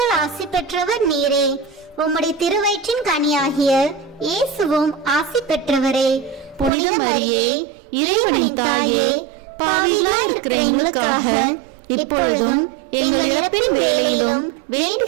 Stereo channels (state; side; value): drops out; left; at 6.7 s